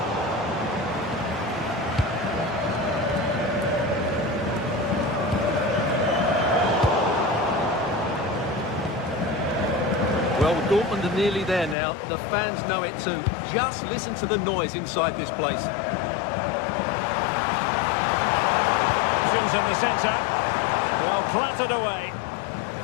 Well, Dortmund are nearly there now. The fans know it too. Just listen to the noise inside this place. Options in the centre. Well, clattered away.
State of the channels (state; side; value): drops out; right; at 11.8 s